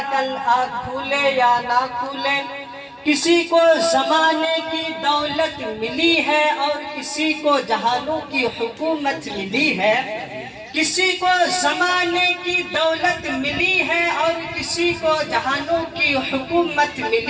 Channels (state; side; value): identical; both; correlation 1.00